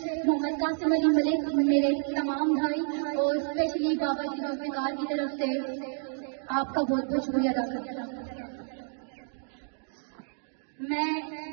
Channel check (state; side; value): silent; left; digital silence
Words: محمد قاسم علی ملک، میرے تمام بھائی اور اسپیشلی بابا جی ذوالفقار کی طرف سے آپ کا بہت بہت شکریہ ادا کرتا ہوں۔ میں